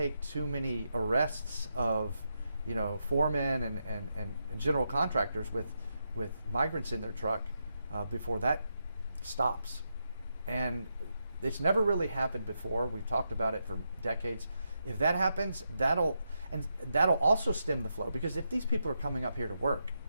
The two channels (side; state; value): both; inverted; correlation -0.84